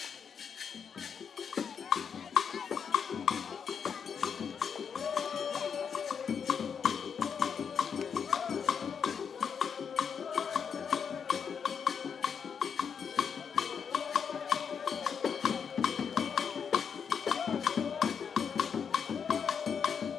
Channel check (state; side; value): quieter; right; 7.3 dB